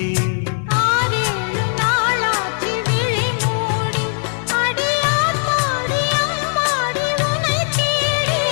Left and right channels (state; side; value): silent; right; 61 dB below the other